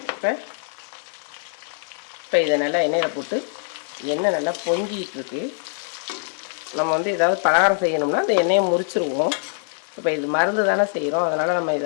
இப்போ இதை நல்லா எண்ணெயில் போட்டு எண்ணெய் நல்லா பொங்கிட்டு இருக்கு. நம்ம வந்து ஏதாவது பலகாரம் செய்யணும்னா அந்த எண்ணெயை முறிச்சிருவோம். இப்போ இது மருந்து தானே செய்கிறோம், அதனால் நம்ம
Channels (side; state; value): right; silent; digital silence